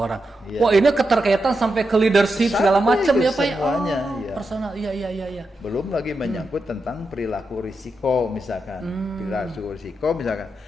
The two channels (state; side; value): normal; both; correlation 0.87